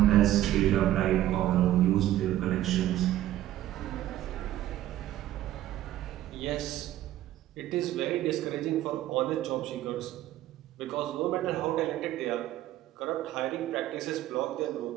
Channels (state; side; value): quieter; left; 13.7 dB